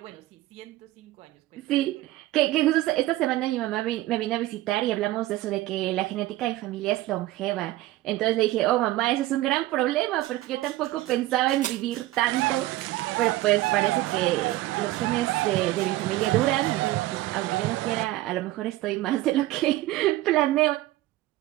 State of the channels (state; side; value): quieter; left; 16.7 dB